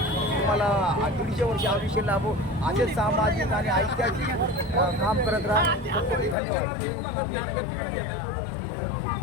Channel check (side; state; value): right; drops out; at 6.4 s